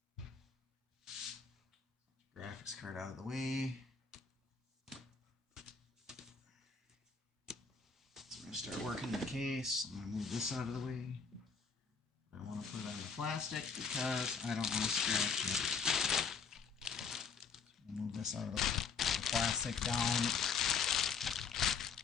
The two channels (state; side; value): quieter; right; 5.5 dB